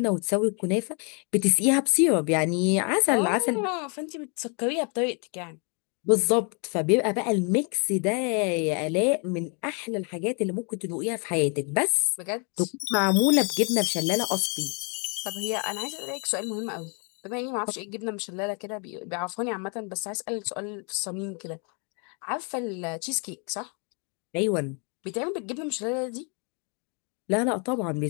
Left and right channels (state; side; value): quieter; right; 36.6 dB